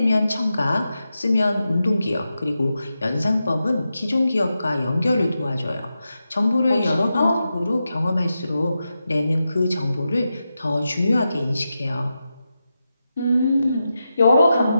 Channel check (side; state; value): both; inverted; correlation -0.89